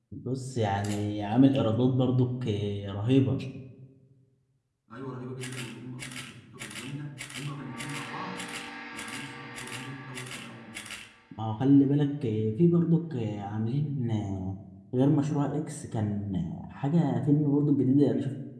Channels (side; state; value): both; identical; correlation 1.00